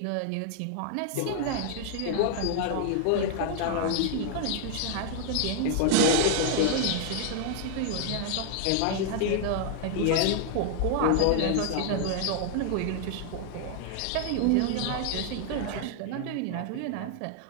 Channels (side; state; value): both; different; correlation 0.00